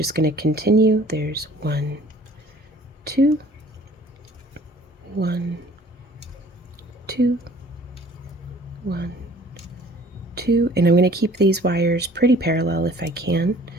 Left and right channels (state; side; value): normal; both; correlation 0.53